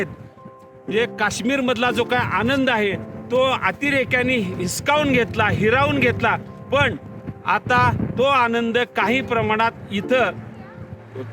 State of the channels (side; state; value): both; identical; correlation 1.00